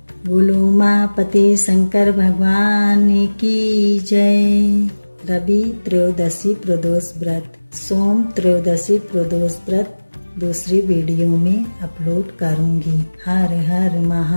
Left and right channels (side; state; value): both; inverted; correlation -1.00